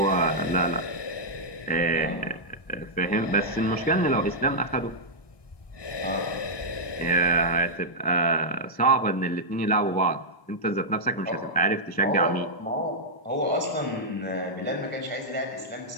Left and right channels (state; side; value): late; right; 1.2 ms